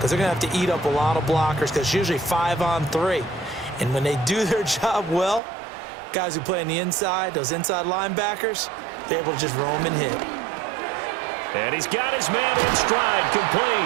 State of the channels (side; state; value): left; drops out; at 5.4 s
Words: they're going to have to eat up a lot of blockers because it's usually 5-on-3. And when they do their job well, guys who play on the inside, those inside linebackers, they're able to just roam and hit. And he's got his man in stride,